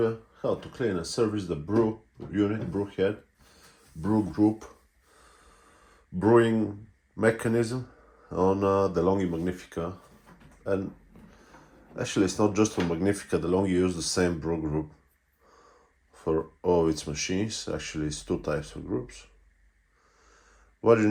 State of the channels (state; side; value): identical; both; correlation 1.00